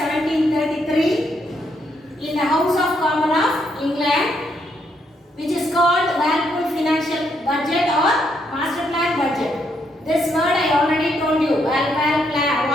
in the House of Commons of England, which is called Walpole Financial Budget or Master Plan Budget. This word I already told you.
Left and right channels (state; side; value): normal; both; correlation 0.75